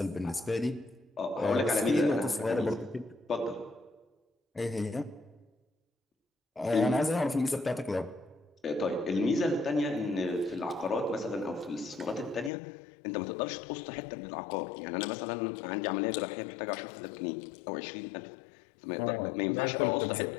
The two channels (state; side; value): drops out; right; at 12.5 s